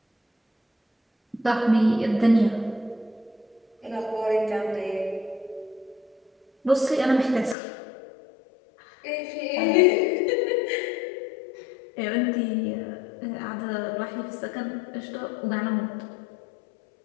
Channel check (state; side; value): drops out; right; at 7.6 s